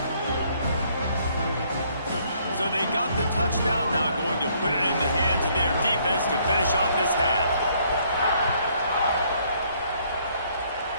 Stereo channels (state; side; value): inverted; both; correlation -0.66